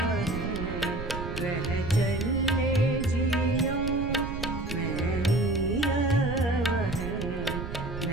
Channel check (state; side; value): noise; right; rumble, 7 dB below the sound